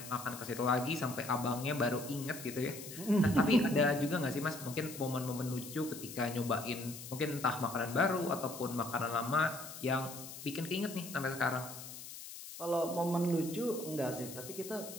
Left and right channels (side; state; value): left; noise; hiss, 12 dB below the sound